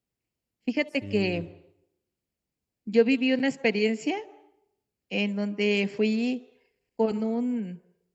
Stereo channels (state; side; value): identical; both; correlation 1.00